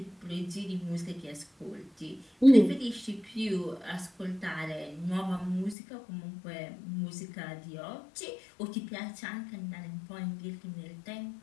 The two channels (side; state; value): right; drops out; at 5.8 s